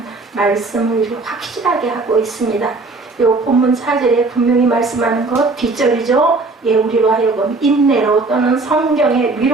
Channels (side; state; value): left; quieter; 3.6 dB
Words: 말씀을 확실하게 하고 있습니다. 이 본문 4절에 분명히 말씀하는 것 뒷절이죠. 우리로 하여금 인내로 또는 성경의